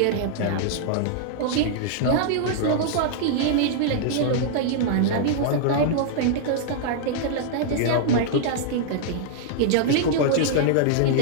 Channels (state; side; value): different; both; correlation -0.01